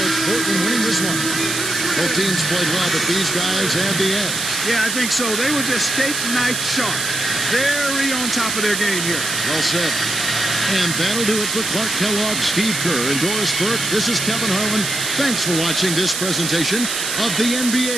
it's Portland winning this one. Both teams played well, but these guys had the edge. Yeah, I think so. They were just steak knife sharp. Very on top of their game here. Well said. And that'll do it for Clark Kellogg, Steve Kerr, and Doris Burke. This is Kevin Harlan. Thanks for watching this presentation of the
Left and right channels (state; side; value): noise; right; hiss, 2 dB below the sound